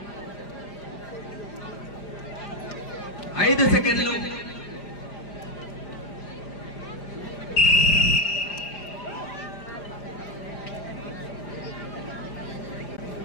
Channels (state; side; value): late; right; 5.0 ms